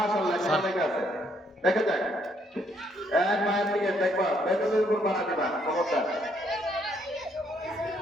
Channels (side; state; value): both; normal; correlation 0.70